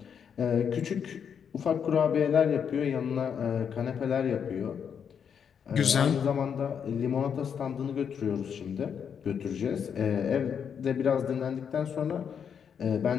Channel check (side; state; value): right; quieter; 7.5 dB